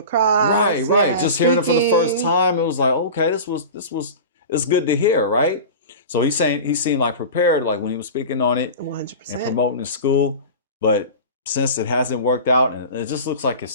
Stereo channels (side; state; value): both; inverted; correlation -0.32